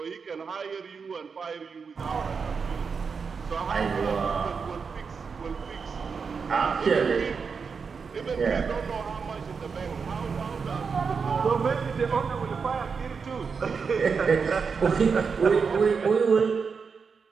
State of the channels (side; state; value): left; quieter; 5.5 dB